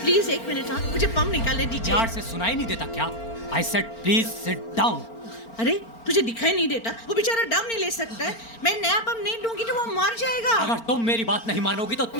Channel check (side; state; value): right; late; 4.4 ms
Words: प्लीज एक मिनट। हाँ मुझे पंप निकालने दीजिए। यार से सुनाई नहीं देता क्या? I said please sit down. अरे तुझे दिखाई नहीं देता? वो बेचारा दम नहीं ले सकता है। मैं नया पंप नहीं दूंगी तो वो मर जाएगा। अगर तुम मेरी बात नहीं मानोगी तो